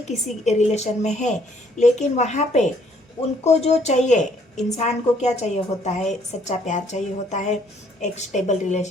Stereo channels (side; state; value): both; normal; correlation 0.65